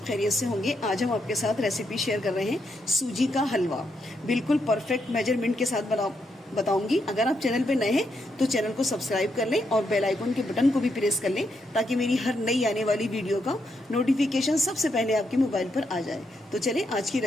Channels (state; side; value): normal; both; correlation 0.80